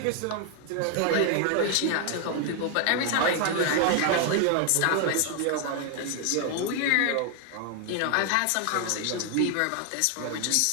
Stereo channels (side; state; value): both; different; correlation 0.01